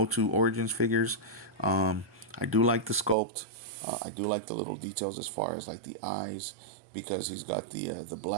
Origins figures. I do like the sculpt. I do like the little details as far as like the eyes, because he's got the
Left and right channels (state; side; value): drops out; left; at 3.2 s